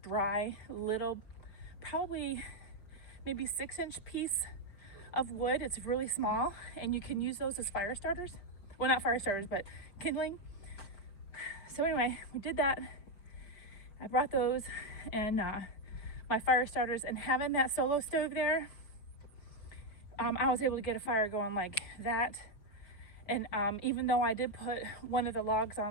little, probably maybe 6-inch piece of wood. It's really small, and you can use those as fire starters. Well, not fire starters, but kindling. So anyway, we did that. I brought those and my fire starters, and having that Solo Stove there, I was able to get a fire going like that. And even though I did put one of the logs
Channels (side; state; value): right; late; 5.6 ms